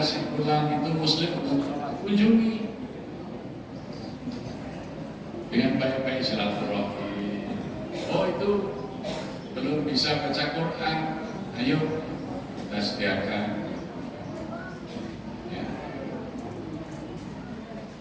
si pulang itu muslim, kunjungi dengan baik-baik silaturahmi. Oh itu belum bisa baca Quran, ayo kita sediakan. Ya.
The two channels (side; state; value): both; identical; correlation 1.00